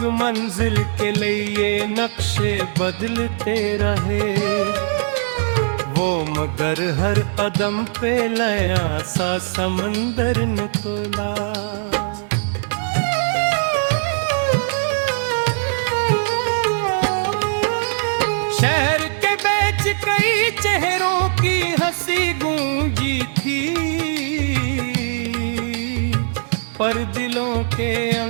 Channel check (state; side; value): silent; left; digital silence